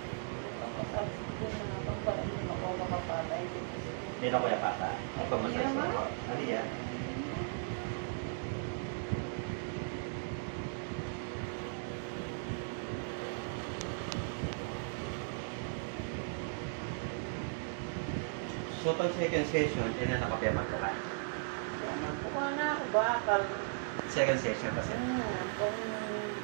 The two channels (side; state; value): left; silent; digital silence